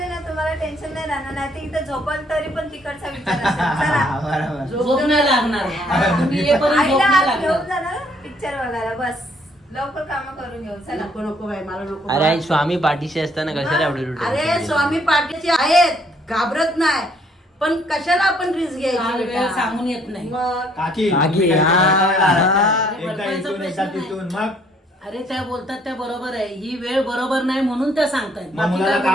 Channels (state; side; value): normal; both; correlation 0.65